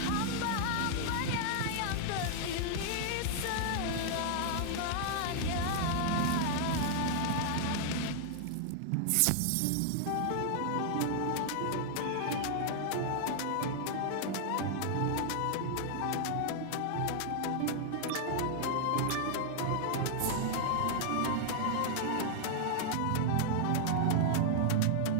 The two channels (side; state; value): both; different; correlation -0.01